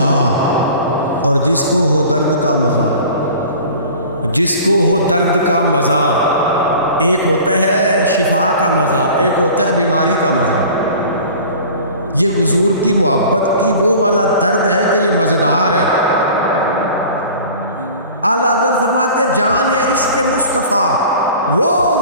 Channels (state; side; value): inverted; both; correlation -0.42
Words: اور جس کو ہو درد کا مزہ، جس کو ہو درد کا مزہ، ایک ہوتا ہے شفا کا مزہ، ایک ہوتا ہے بیماری کا مزہ. یہ حضور کی محبت کی وہ والا درد ہے کہ یہ مزیدار ہے. اعلیٰ حضرت فرماتے جان ہے عشق مصطفیٰ، روز